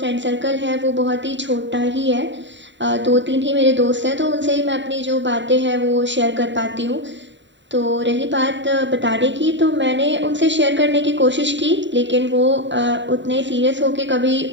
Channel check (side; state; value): left; late; 0.53 ms